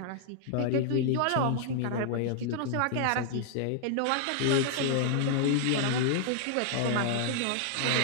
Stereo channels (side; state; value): both; different; correlation -0.01